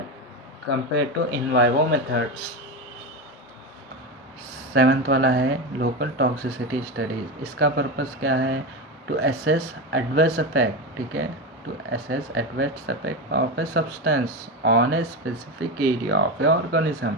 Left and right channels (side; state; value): both; normal; correlation 0.17